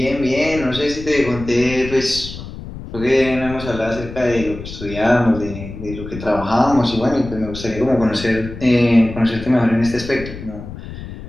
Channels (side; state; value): left; noise; rumble, 11 dB below the sound